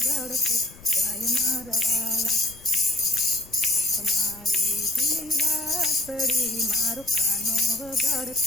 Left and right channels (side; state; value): left; noise; rumble, 21 dB below the sound